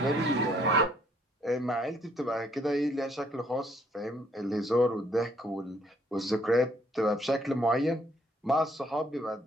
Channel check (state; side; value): normal; both; correlation 0.66